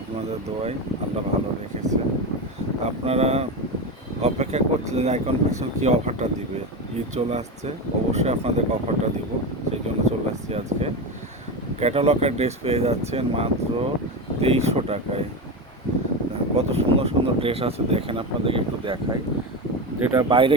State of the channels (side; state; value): both; normal; correlation 0.18